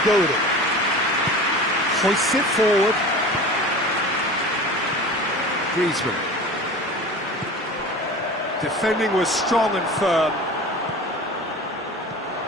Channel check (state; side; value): normal; both; correlation 0.35